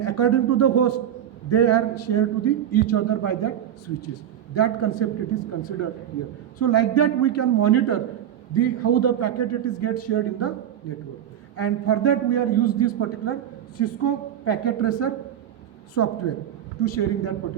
according to the host they are shared to the each other by that switches. That concept it is considered here. So like that we can monitor the how the packet it is get shared in the network. And for that we are use this particular Cisco packet tracer software to sharing that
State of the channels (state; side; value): quieter; left; 10.2 dB